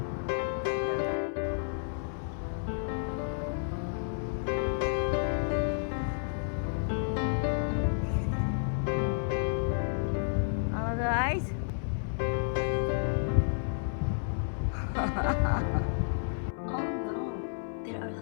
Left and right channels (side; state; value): right; silent; 57 dB below the other